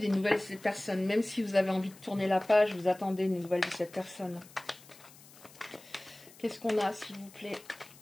nouvelles de cette personne, même si vous avez envie de tourner la page, vous attendez des nouvelles de cette personne. Qu'est-ce qu'on a, s'il vous plaît?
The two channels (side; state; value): left; noise; hiss, 22 dB below the sound